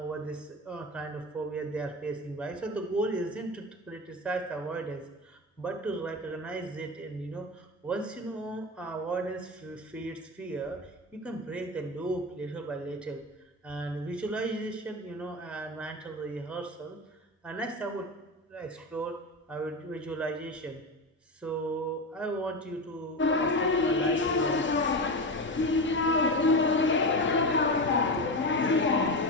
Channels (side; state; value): both; normal; correlation 0.21